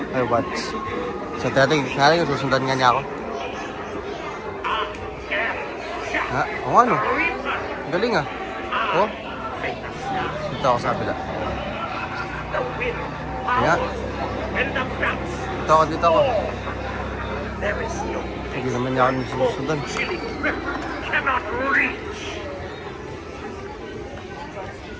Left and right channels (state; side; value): identical; both; correlation 1.00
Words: I watch. So dating susundan nga niya ako. Ha? O ano? Galing ah. Oh. Dito ako sa kabila. Kaya. Dito ako. Hindi naman niya ako susundan.